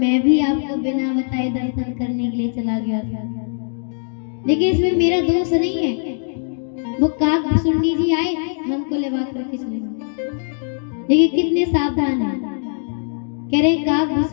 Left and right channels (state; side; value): silent; right; 65 dB below the other